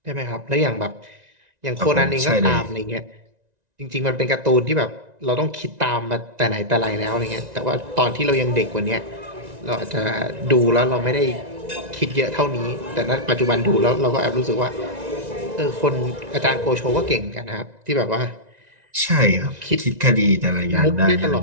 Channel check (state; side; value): late; left; 1.9 ms